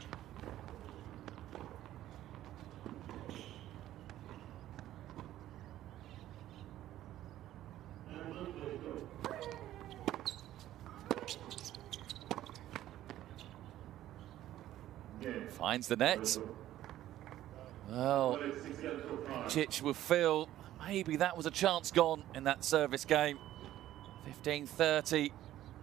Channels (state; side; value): quieter; left; 13.4 dB